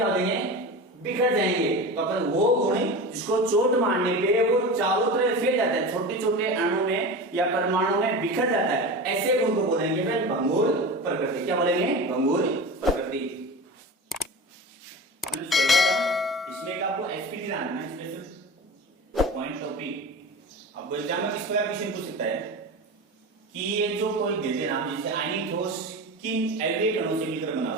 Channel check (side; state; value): both; normal; correlation 0.29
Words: हो जाएंगे, बिखर जाएंगे। तो अपन वो गुण जिसको चोट मारने पे वो चारों तरफ फैल जाता है, छोटे छोटे अणु में या परमाणु में बिखर जाता है, ऐसे गुण को बोलेंगे फिर भंगुर प्रकृति। क्या बोलेंगे, भंगुर प्रकृति। इसमें आपको एसपीटी जानना है, स्पेशल पॉइंट टॉपिक। अब एग्जाम में किस प्रकार क्वेश्चन पूछ सकता है कि ये जो कोई देते नाम, जैसे आयनिक ठोस किन अवयवी कणों से मिलकर बना